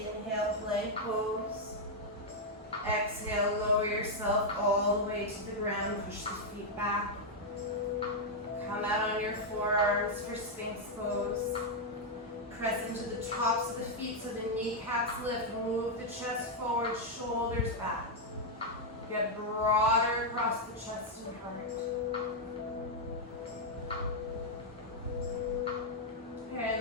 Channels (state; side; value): normal; both; correlation -0.02